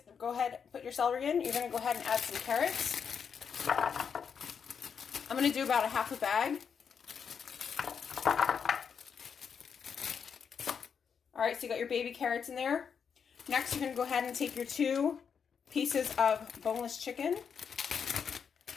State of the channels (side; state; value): right; quieter; 6.8 dB